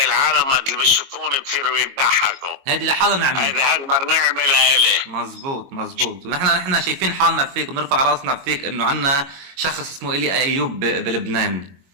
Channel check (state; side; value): late; left; 22 ms